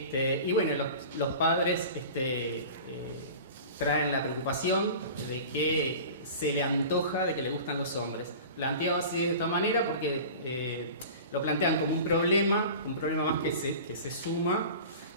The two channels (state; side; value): inverted; both; correlation -0.37